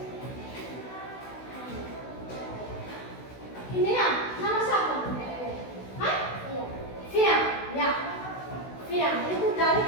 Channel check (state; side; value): late; right; 16 ms